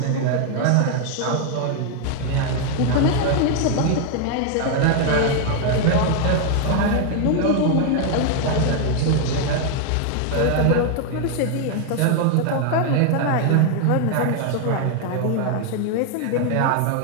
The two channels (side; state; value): both; different; correlation 0.00